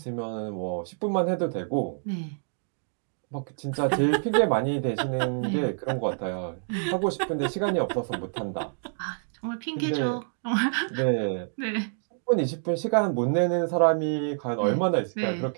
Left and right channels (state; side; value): silent; left; digital silence